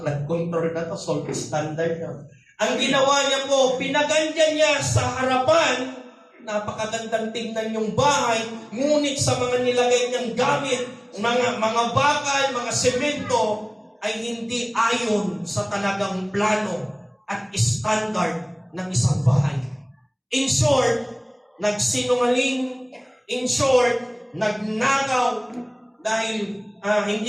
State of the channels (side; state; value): both; identical; correlation 1.00